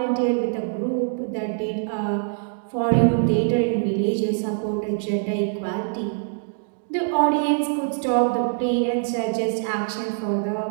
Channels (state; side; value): silent; left; digital silence